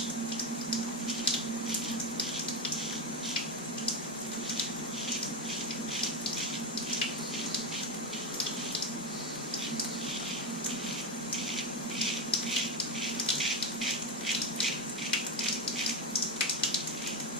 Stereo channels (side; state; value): both; normal; correlation 0.10